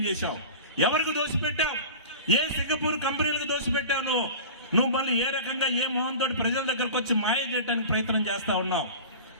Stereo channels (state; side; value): inverted; both; correlation -0.35